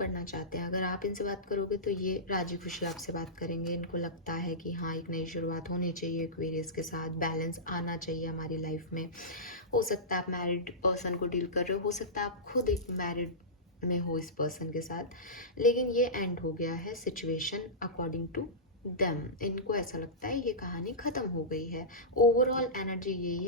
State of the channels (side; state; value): both; normal; correlation -0.16